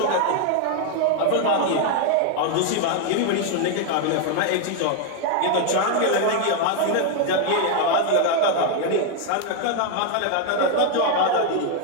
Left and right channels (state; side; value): different; both; correlation 0.00